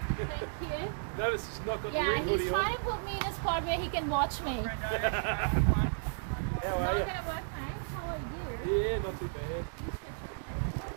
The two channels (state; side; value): silent; left; 55 dB below the other